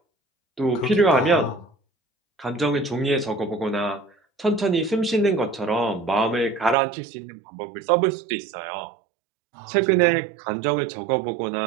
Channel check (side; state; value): left; drops out; at 6.8 s